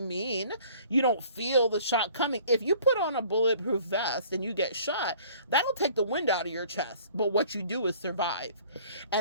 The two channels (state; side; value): inverted; both; correlation -0.53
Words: you don't feel the shot coming. If you put on a bulletproof vest and you get shot, that'll take the wind out of your chest. But what you do is survive.